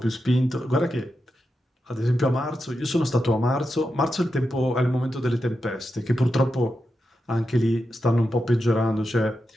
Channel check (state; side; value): normal; both; correlation 0.88